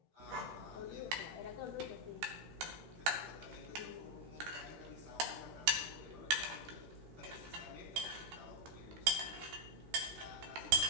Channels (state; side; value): late; left; 13 ms